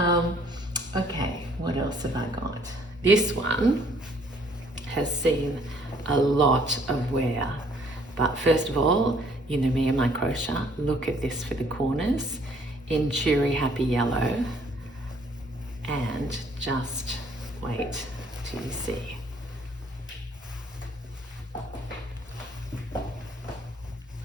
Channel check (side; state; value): both; normal; correlation 0.62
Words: Okay, what else have I got? This one has seen a lot of wear, but first of all, you know me and my crochet. Look at this for the corners in cheery happy yellow, and just wait till you see.